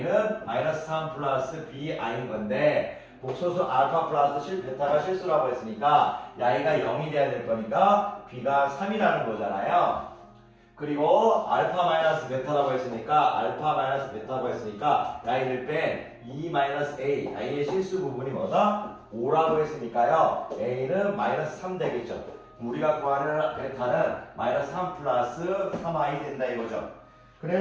마이너스 3 플러스 bi인 건데 복소수 알파 플러스 베타가 실수라고 했으니까 야이가 0이 돼야 될 거니까 b가 3이라는 거잖아요. 그리고 알파 마이너스 베타라고 했으니까 야이를 뺀 2-a 야이의 실수 부분이 뭐다? 5라고 했으니까요. a는 마이너스 3 되겠죠. 우리가 구하는 베타는 마이너스 3 플러스 3i 된다 이거죠.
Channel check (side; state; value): both; identical; correlation 1.00